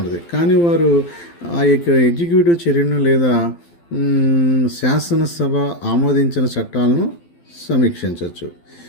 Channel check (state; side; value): late; right; 12 ms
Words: కానీ వారు ఆ యొక్క ఎగ్జిక్యూటివ్ చర్యను లేదా శాసనసభ ఆమోదించిన చట్టాలను సమీక్షించవచ్చు.